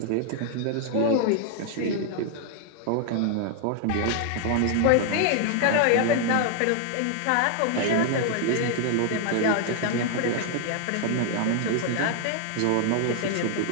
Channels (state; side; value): different; both; correlation 0.00